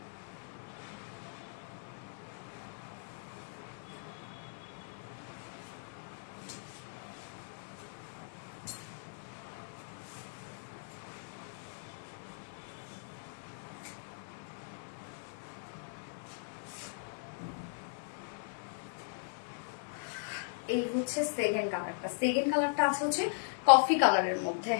এই হচ্ছে সেকেন্ড কালারটা। সেকেন্ড কালারটা আছে হচ্ছে কফি কালারের মধ্যে,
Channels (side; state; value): right; silent; 52 dB below the other